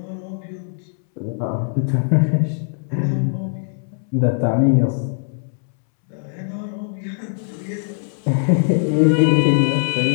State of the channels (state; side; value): silent; right; 65 dB below the other